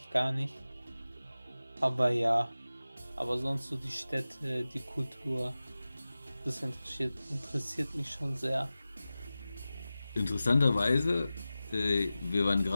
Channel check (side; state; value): both; inverted; correlation -0.95